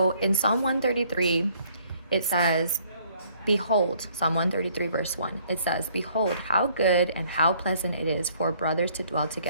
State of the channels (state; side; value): inverted; both; correlation -0.62